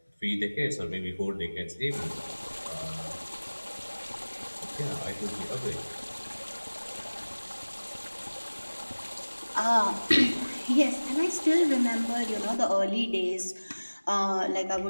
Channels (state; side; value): inverted; both; correlation -1.00